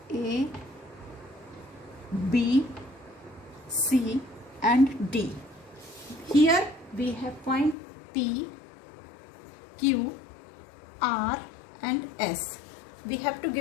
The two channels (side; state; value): right; drops out; at 7.8 s